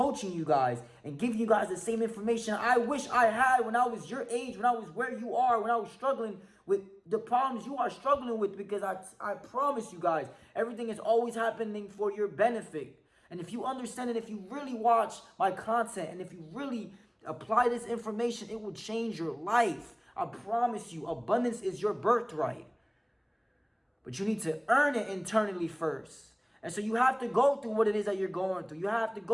you guys, and giving you guys the same information I wish I had when I was your age, when I was where you are, when I was struggling with the problems you are struggling with. Because I promise you guys, everything is always happening for your benefit. And if you understand it, if you really watch my content, and if you really apply this information, it will change your life. I promise you, abundance is your birthright. But you need to earn it internally first. And so you have to go through what it is that you're going through. You have to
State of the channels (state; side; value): identical; both; correlation 1.00